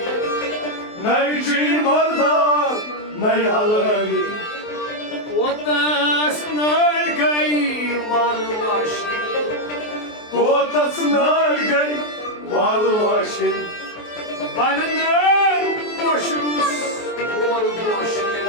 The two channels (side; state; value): right; late; 23 ms